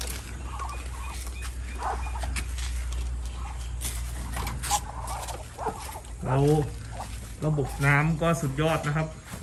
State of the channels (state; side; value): identical; both; correlation 1.00